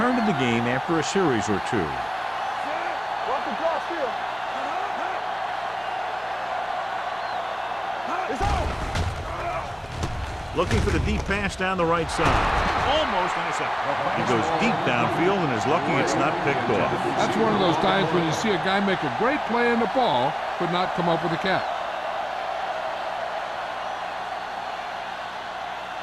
to the game after a series or two. Walk the cross field. It's out. Looking for the deep pass down the right side. Almost intercepted. He goes deep downfield and is lucky it's not picked off. That's one of those times when you see a guy make a great play in the ball, but not come up with a catch.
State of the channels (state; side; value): identical; both; correlation 1.00